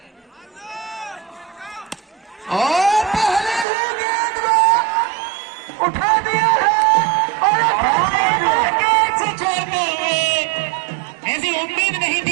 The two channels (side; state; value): left; drops out; at 3.7 s